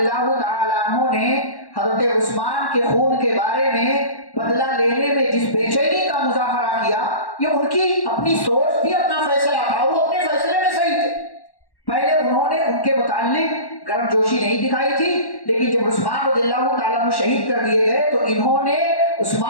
تعالیٰ عنہ نے حضرت عثمان کے خون کے بارے میں بدلہ لینے میں جس بے چینی کا مظاہرہ کیا، یہ ان کی اپنی سوچ تھی، اپنا فیصلہ تھا، وہ اپنے فیصلے میں صحیح تھے۔ پہلے انہوں نے ان کے متعلق گرم جوشی نہیں دکھائی تھی، لیکن جب عثمان رضی اللہ تعالیٰ عنہ شہید کر دیے گئے تو انہوں نے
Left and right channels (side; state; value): right; late; 1.1 ms